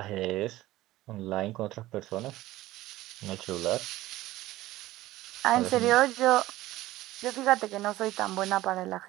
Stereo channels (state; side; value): quieter; left; 16.6 dB